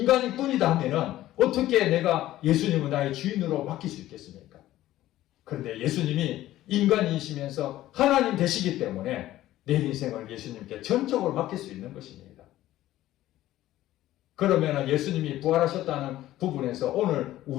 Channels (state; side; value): quieter; right; 14.6 dB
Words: 뿐이다 하면은 어떻게 내가 예수님을 나의 주인으로 맡길 수 있겠습니까? 그런데 예수님이 인간이시면서 하나님 되시기 때문에 내 인생을 예수님께 전적으로 맡길 수 있는 것입니다. 그러면 예수님이 부활하셨다는 부분에서 오늘